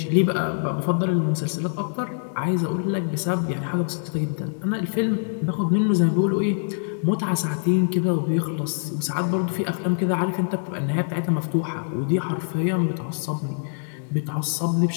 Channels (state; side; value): silent; right; digital silence